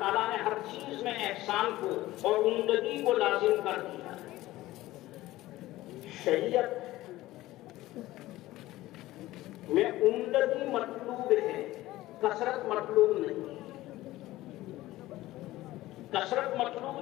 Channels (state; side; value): quieter; right; 16.8 dB